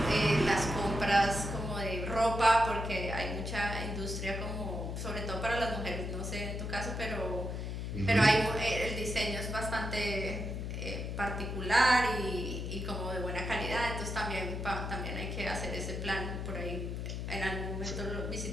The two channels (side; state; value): left; noise; hum, 4 dB below the sound